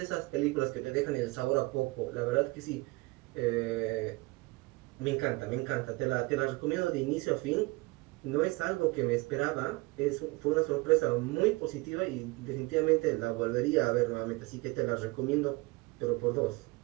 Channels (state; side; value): quieter; left; 23.3 dB